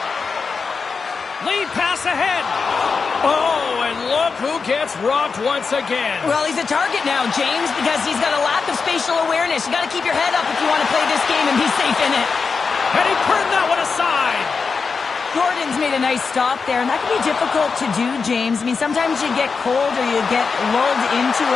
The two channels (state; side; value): quieter; right; 5.1 dB